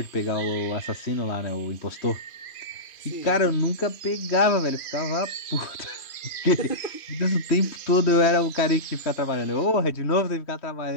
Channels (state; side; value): late; right; 2.5 ms